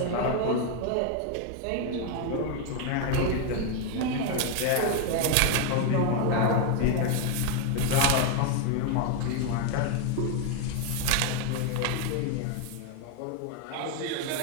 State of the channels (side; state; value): both; different; correlation 0.01